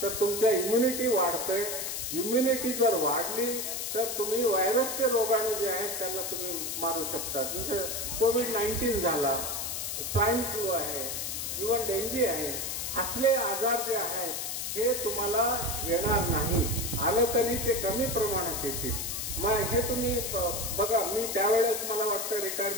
तर तुमच्या इम्युनिटी वाढते. इम्युनिटी जर वाढली तर तुम्ही व्हायरसचे रोगाणू जे आहेत त्याला तुम्ही मारू शकता. जसं कोविड-19 झाला, स्वाईन फ्लू आहे, इव्हन डेंगी आहे, असले आजार जे आहेत हे तुम्हाला येणार नाही. आलं तरी ते कमी प्रमाणात येतील. मग हे तुम्ही बघा, मी त्यावेळेस मला वाटतं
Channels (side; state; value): left; noise; hiss, 3 dB below the sound